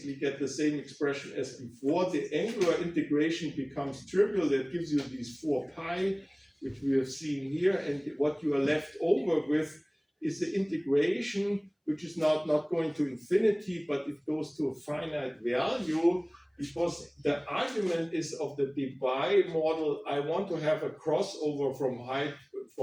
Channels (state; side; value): identical; both; correlation 1.00